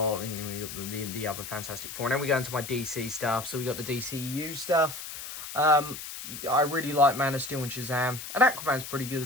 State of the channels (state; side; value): noise; left; hiss, 9 dB below the sound